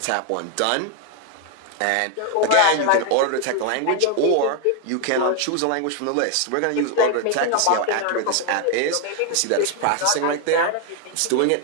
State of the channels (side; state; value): both; different; correlation 0.01